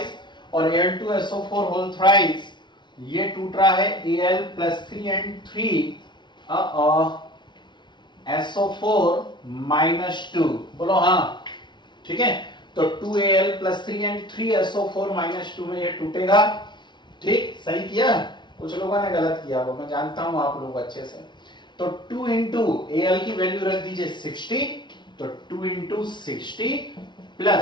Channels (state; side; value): late; right; 0.22 ms